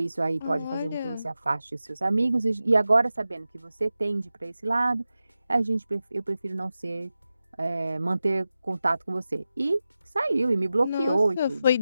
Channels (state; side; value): inverted; both; correlation -0.93